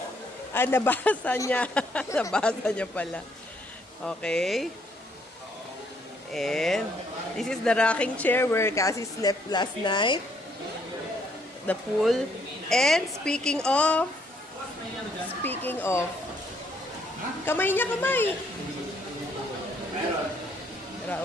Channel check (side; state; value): both; normal; correlation 0.68